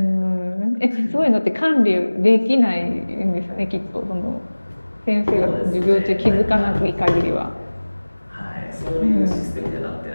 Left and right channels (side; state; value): both; inverted; correlation -1.00